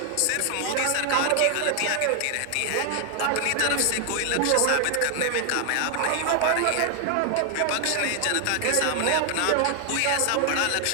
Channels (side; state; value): both; different; correlation 0.00